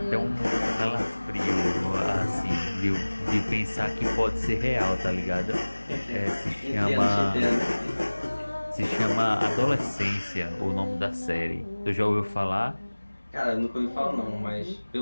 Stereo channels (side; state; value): both; inverted; correlation -1.00